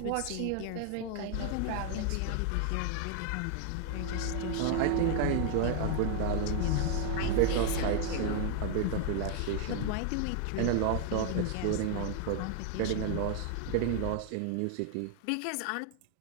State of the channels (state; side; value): different; both; correlation 0.00